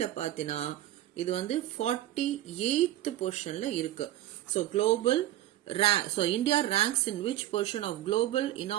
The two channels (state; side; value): quieter; left; 13.8 dB